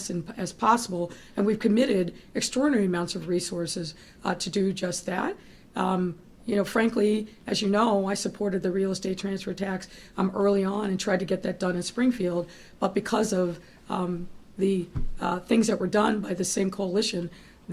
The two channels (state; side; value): identical; both; correlation 1.00